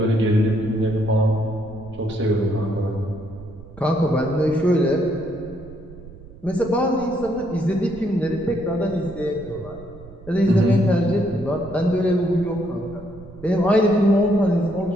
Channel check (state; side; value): noise; right; rumble, 19 dB below the sound